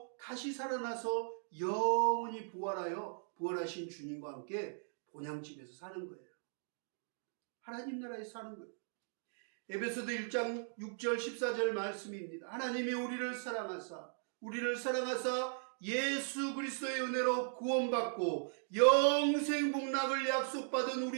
다시 살아나서 영원히 부활하여 부활하신 주님과 함께 본향집에서 사는 거예요. 하나님 나라에서 사는 거예요. 에베소서 1장 6절 14절 말씀입니다. 하나님이 우리를 사랑하사 예수 그리스도의 은혜로 구원받고 영생 복락을 약속받은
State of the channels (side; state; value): left; silent; digital silence